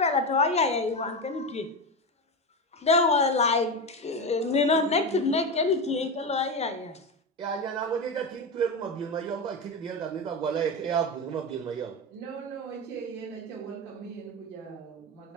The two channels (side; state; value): both; normal; correlation 0.17